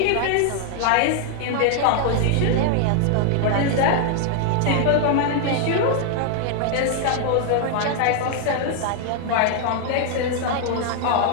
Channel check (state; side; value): different; both; correlation 0.00